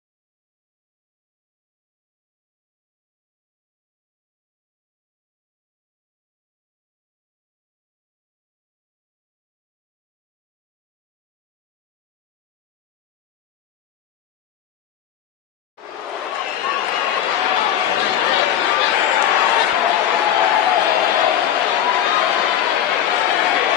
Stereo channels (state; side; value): quieter; right; 10.4 dB